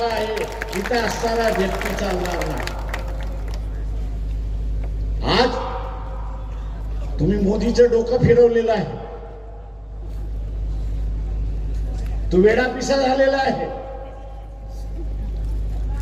आहे, इथे असताना व्यक्ती चालणार नाही. आज तुम्ही मोदीचं डोकं फिरवलेलं आहे, तो वेडापिसा झालेला आहे.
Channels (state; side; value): identical; both; correlation 1.00